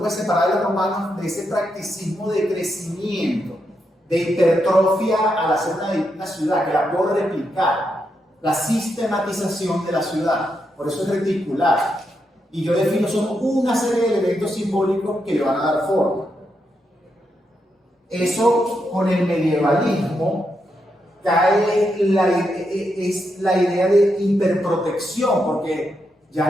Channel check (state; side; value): normal; both; correlation 0.83